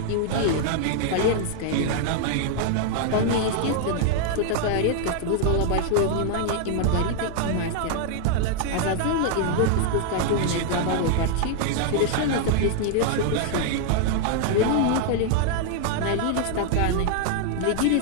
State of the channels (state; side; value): different; both; correlation 0.00